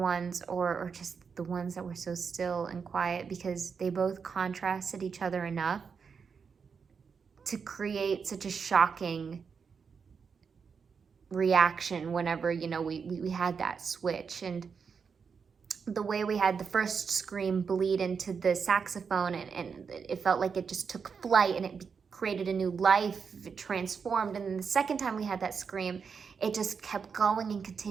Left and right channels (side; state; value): left; quieter; 6.0 dB